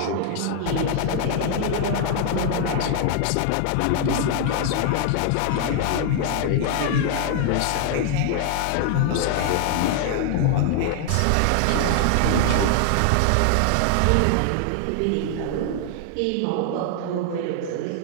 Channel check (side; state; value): both; different; correlation 0.00